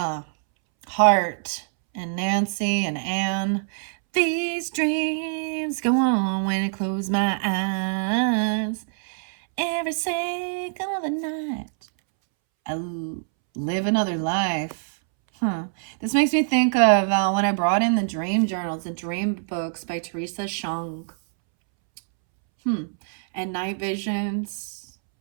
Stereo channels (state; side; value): silent; left; 62 dB below the other